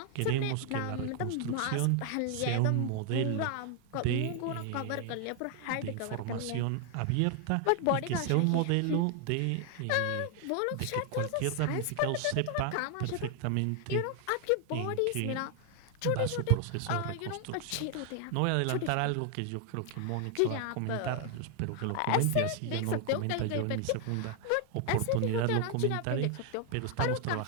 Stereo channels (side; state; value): both; different; correlation 0.00